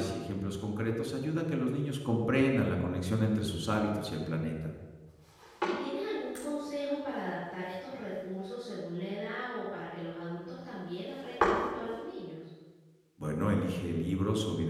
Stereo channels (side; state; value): both; identical; correlation 1.00